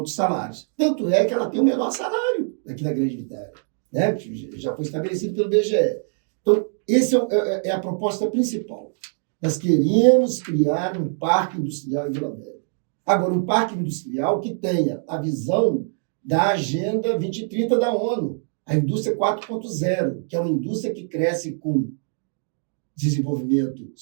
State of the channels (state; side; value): silent; left; digital silence